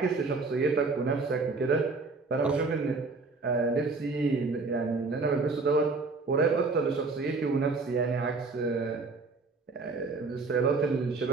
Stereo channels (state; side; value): quieter; left; 3.9 dB